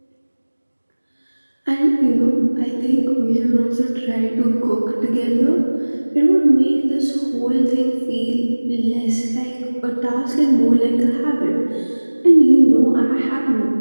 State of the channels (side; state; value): both; inverted; correlation -1.00